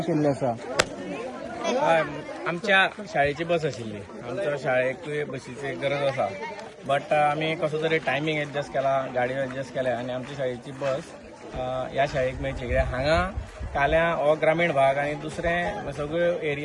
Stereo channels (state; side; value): identical; both; correlation 1.00